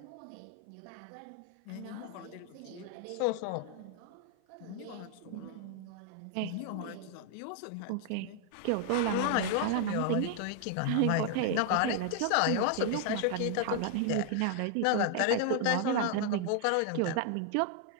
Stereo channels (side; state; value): both; different; correlation 0.00